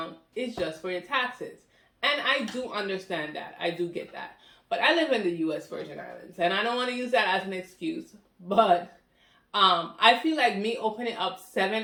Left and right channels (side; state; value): both; identical; correlation 1.00